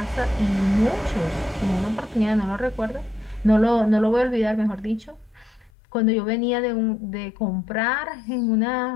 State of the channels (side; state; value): right; drops out; at 5.7 s